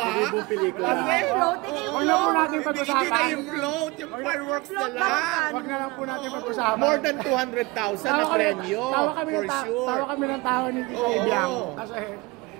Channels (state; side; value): quieter; left; 23.7 dB